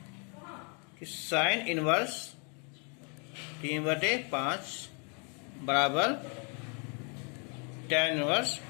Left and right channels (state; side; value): quieter; right; 36.8 dB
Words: कि साइन इनवर्स 3/5 बराबर tan इनवर्स